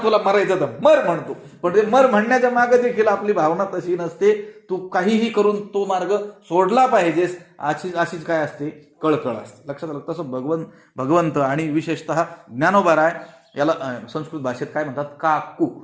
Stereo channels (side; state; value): both; identical; correlation 1.00